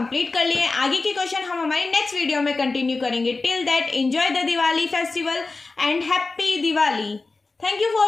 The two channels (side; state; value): right; quieter; 3.7 dB